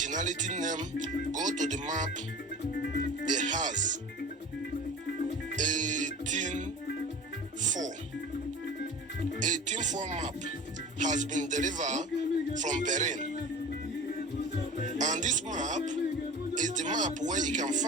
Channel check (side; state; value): both; normal; correlation 0.38